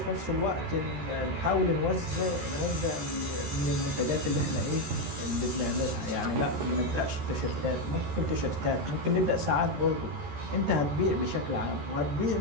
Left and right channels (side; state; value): left; late; 13 ms